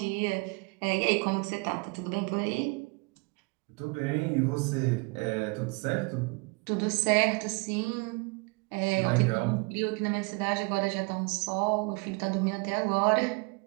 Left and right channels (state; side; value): quieter; left; 29.5 dB